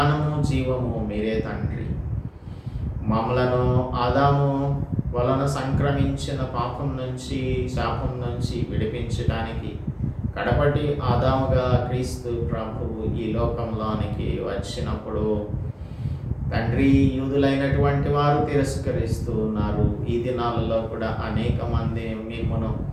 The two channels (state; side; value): identical; both; correlation 1.00